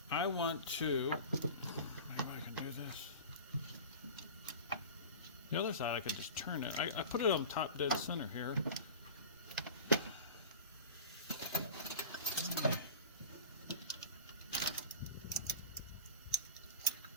I want to, maybe I can do this. The other side I could just turn it. I put it on top dead center here.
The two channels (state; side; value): inverted; both; correlation -0.34